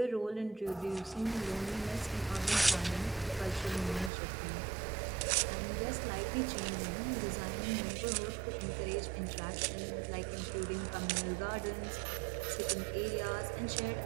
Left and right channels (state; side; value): drops out; left; at 4.1 s